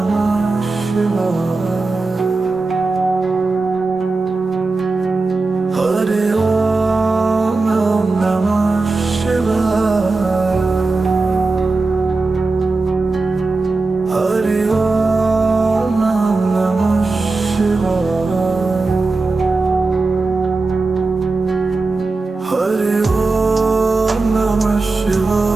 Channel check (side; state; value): left; quieter; 3.6 dB